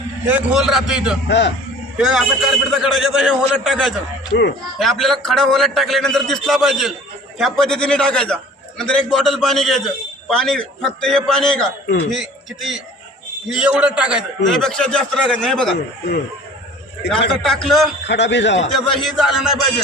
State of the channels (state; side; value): normal; both; correlation 0.46